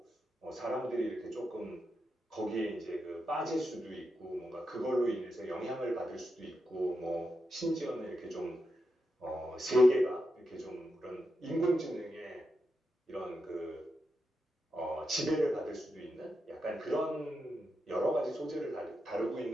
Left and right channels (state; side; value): normal; both; correlation 0.86